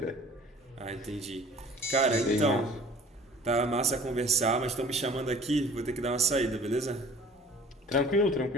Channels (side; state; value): both; normal; correlation 0.48